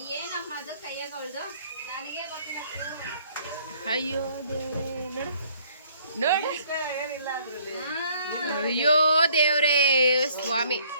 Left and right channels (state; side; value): inverted; both; correlation -0.62